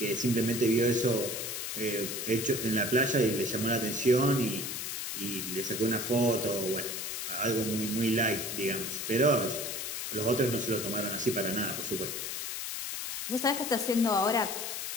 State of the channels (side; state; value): left; noise; hiss, 4 dB below the sound